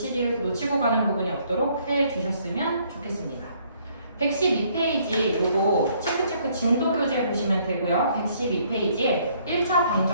가는 부분이 없도록 해주셨으면 좋겠습니다. 112페이지 요거 체크 진도 교재 보시면 되고요. 112페이지에 1차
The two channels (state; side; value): inverted; both; correlation -0.65